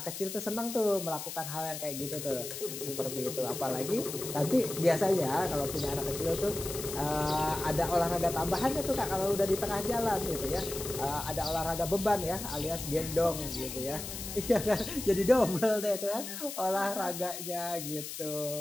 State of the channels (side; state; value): left; noise; hiss, 8 dB below the sound